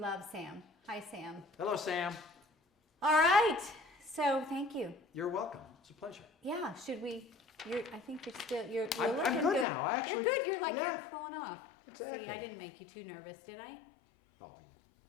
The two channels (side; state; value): right; drops out; at 9.7 s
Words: Sam. Hi, Sam. Hello, Sam. All right. So thank you. You're welcome. It's a pleasure. Yeah. Should we? I think you're still. You're I'm looking good now. You're good. You're like yeah. you're cooling off. Exactly. See, I didn't make you too nervous, did I? Oh,